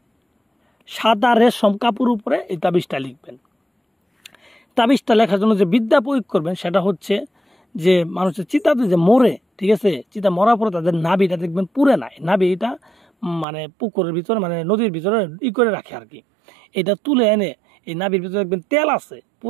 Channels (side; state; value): left; drops out; at 13.5 s